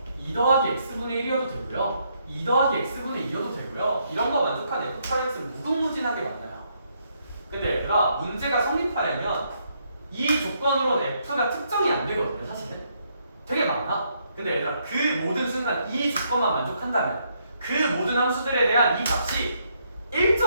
2 더하기 x분의 1이어도 되고요. 2 더하기 x분의 2여도 되고요. 이런 거 만족한 fx는 무궁무진하게 많아요. 근데 얘들아 문제가 성립하려면 이 조건으로는 f가 특정이 안 되거든요. 사실은 되게 많아. 근데 얘들아 그 모든 순간 이 조건만 만족한다면 그 모든 함수들에 대한 이 값이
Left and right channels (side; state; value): both; inverted; correlation -0.74